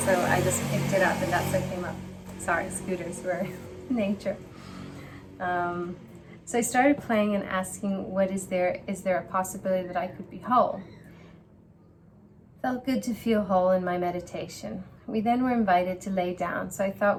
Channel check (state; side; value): identical; both; correlation 1.00